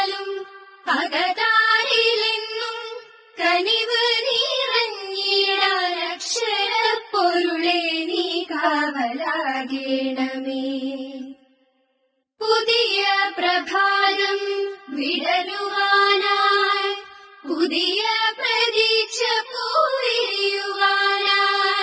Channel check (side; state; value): both; identical; correlation 1.00